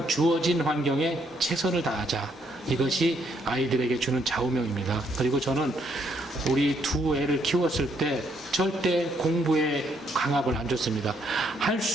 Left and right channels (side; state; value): both; normal; correlation 0.72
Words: 주어진 환경에 최선을 다하자. 이것이 아이들에게 주는 좌우명입니다. 그리고 저는 우리 두 애를 키웠을 때 절대 공부에 강압을 안 줬습니다. 할